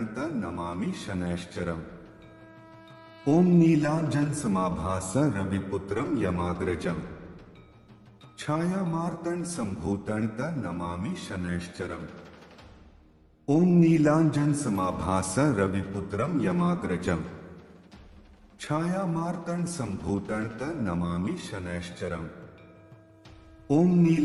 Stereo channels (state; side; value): identical; both; correlation 1.00